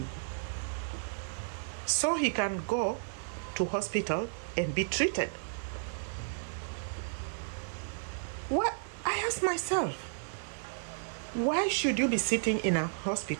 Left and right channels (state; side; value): silent; left; digital silence